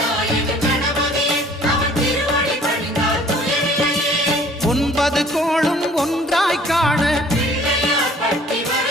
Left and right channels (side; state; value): both; normal; correlation 0.54